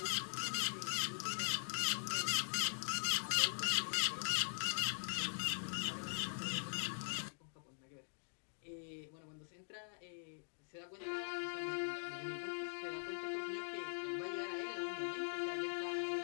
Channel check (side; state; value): right; silent; digital silence